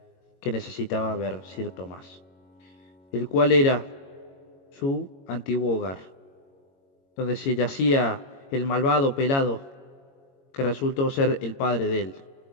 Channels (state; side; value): late; right; 22 ms